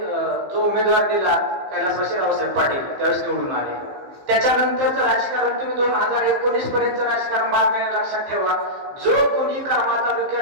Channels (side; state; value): left; late; 15 ms